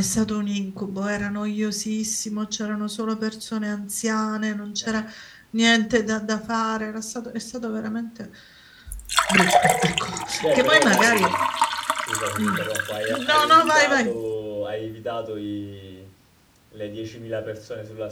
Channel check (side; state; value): both; identical; correlation 1.00